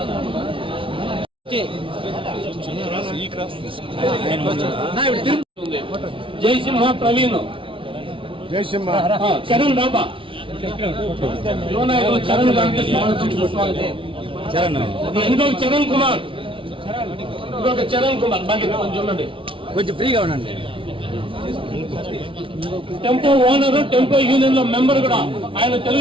జయసింహ ప్రవీణ్ జయసింహ చరణ్ బాబా చరణ్ ఇంకొక చరణ్ కుమార్ ఇంకొక చరణ్ కుమార్ బాగా చూడండి కొంచెం ఫ్రీగా ఉండండి. టెంపో ఓనర్ టెంపో యూనియన్ లో మెంబర్ కూడా ఆయన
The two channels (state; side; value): late; left; 0.25 ms